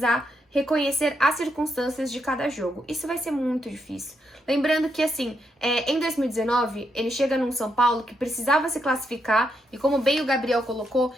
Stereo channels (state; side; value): normal; both; correlation 0.80